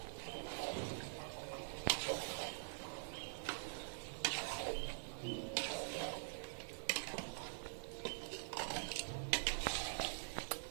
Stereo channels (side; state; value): left; silent; digital silence